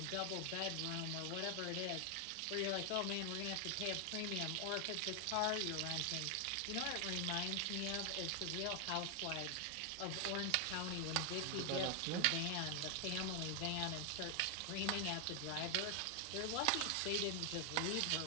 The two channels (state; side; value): different; both; correlation 0.00